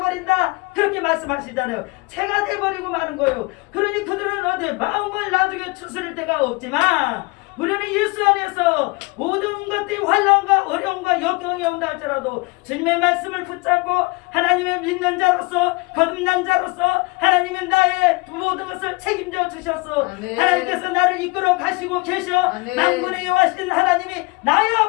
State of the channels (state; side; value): quieter; right; 26.5 dB